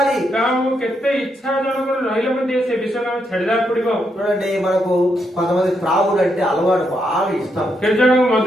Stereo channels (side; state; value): both; normal; correlation 0.79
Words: କାହାକୁ କେତେ ଇଚ୍ଛା ଜଣଙ୍କର ରହିଲେ ମଧ୍ୟ ସେ ବିଷୟକୁ ଆମେ ଛାଡିଦେବାକୁ ପଡିବ। చూడండి, మనకు కొంతమంది త్రాగుడు అంటే అలవాటు బాగా ఇష్టం। କେତେ ଜଣଙ୍କୁ ମଦ